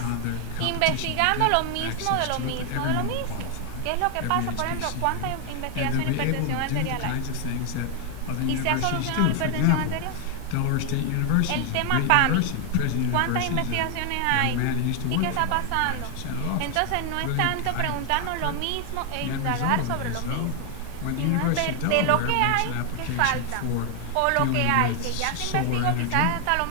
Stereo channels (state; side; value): different; both; correlation 0.01